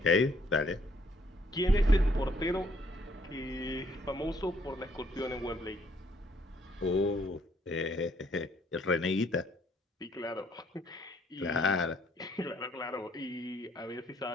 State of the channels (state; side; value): normal; both; correlation 0.66